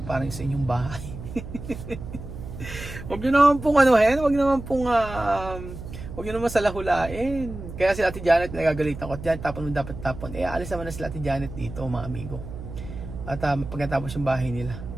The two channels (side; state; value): right; noise; hum, 11 dB below the sound